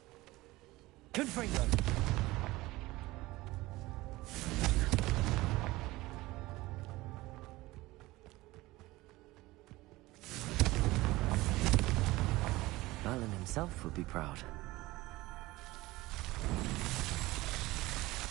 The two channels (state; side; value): quieter; left; 19.4 dB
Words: Confringo. Merlin himself would be proud.